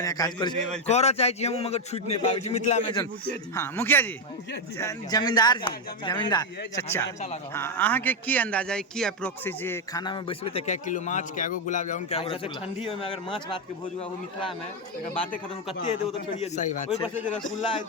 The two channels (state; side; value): normal; both; correlation 0.05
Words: काज करै छी करऽ चाहै छी हम मगर छूट नहीं पाबै छी मिथिला में जन हाँ मुखिया जी जमींदार चचा हाँ अहाँ के की अंदाजा है की अप्रोक्स जे खाना में बैसबे त क्या किलो माछ क्या गो गुलाब जामुन क्या गो रसगुल्ला ठंडी में अगर माछ भात के भोज हुआ वो मिथिला में अगर बातें खत्म कते दे वो तो छोड़िए सही बात ओइ पर से जे रसगुल्ला है